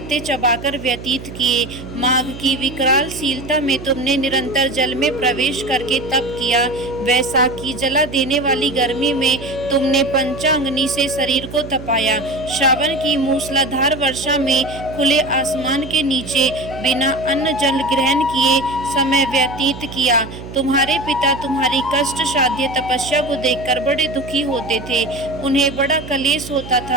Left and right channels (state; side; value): noise; right; hum, 12 dB below the sound